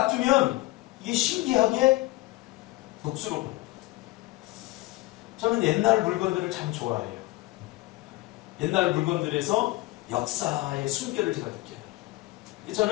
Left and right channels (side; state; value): right; quieter; 20.0 dB